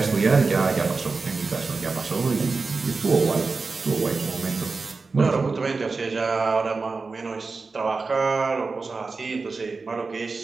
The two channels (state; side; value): quieter; left; 4.2 dB